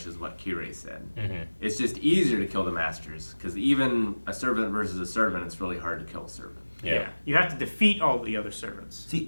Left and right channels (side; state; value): both; inverted; correlation -1.00